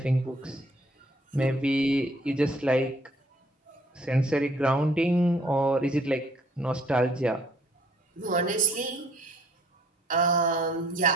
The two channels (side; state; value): both; normal; correlation 0.61